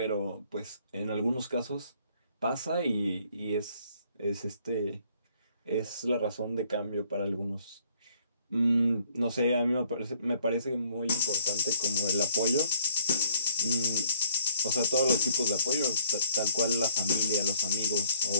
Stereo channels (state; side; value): inverted; both; correlation -0.62